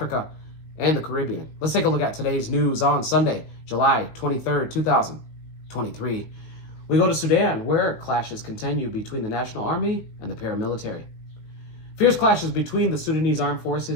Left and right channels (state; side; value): late; right; 19 ms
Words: and the Caribbean. Let's take a look at today's news on Sunday, July 23rd, 2023. We go to Sudan, where clashes continue between the National Army and the paramilitary. Fierce clashes between the Sudanese armed